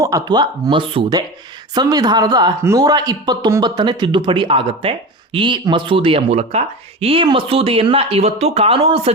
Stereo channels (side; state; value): both; normal; correlation 0.27